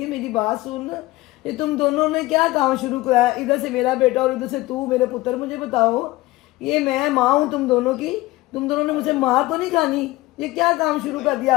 है। मेरी बात सुन, ये तुम दोनों ने क्या काम शुरू कराया? इधर से मेरा बेटा और इधर से तू मेरे पुत्र। मुझे बताओ, ये मैं माँ हूँ तुम दोनों की, तुम दोनों ने मुझे मार तो नहीं खानी? ये क्या काम शुरू कर दिया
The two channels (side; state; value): right; quieter; 19.3 dB